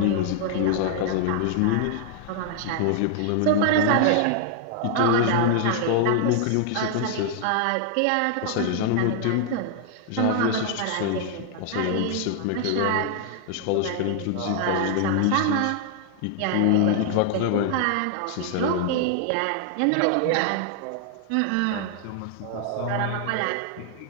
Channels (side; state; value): both; different; correlation 0.00